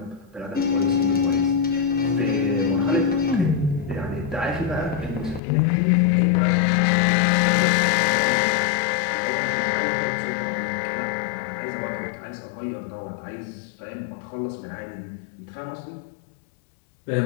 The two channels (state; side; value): drops out; right; at 5.4 s